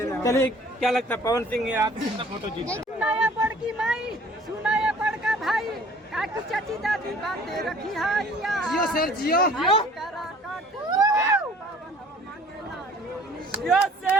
चलिए, क्या लगता है पवन सिंह आप कितना फोटो जीत? सुनाया बड़की माई, सुनाया बड़का भाई, काकी चाची दादी बातें रखी हाइया जियो सर जियो जियो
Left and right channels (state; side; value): normal; both; correlation 0.52